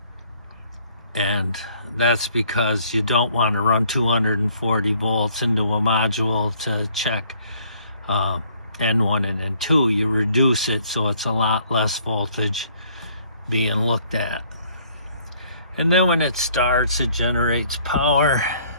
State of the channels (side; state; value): both; inverted; correlation -0.62